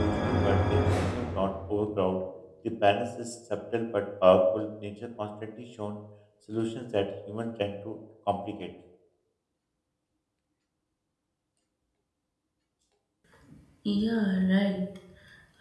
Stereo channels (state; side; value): identical; both; correlation 1.00